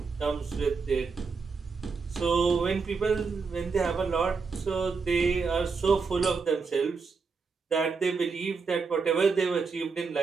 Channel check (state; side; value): quieter; left; 4.9 dB